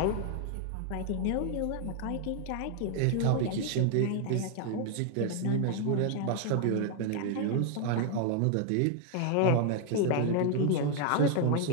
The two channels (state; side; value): different; both; correlation 0.01